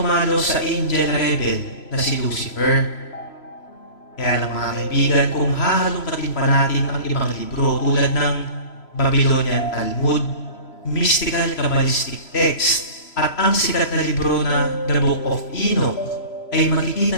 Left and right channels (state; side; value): late; right; 3.0 ms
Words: sa angel rebel na si Lucifer. Kaya lang mga kaibigan, kung hahalongkatin pa natin ang ibang libro tulad ng Babylonian Talmud, mystical Kabbalistic text, at ang sikat na libro na The Book of Enoch, ay makikita